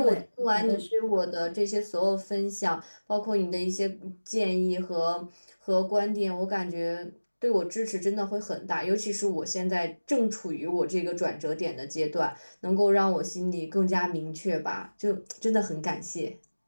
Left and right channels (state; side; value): inverted; both; correlation -1.00